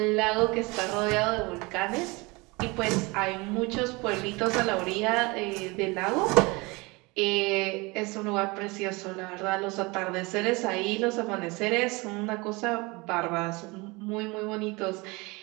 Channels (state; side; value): quieter; left; 25.3 dB